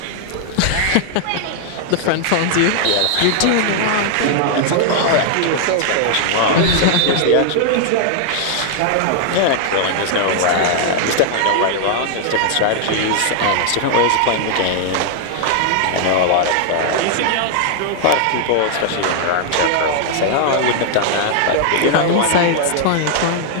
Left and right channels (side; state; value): both; different; correlation 0.00